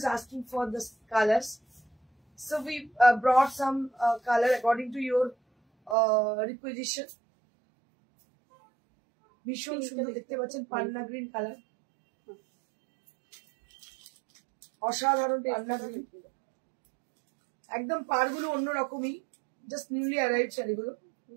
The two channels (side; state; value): left; drops out; at 6.0 s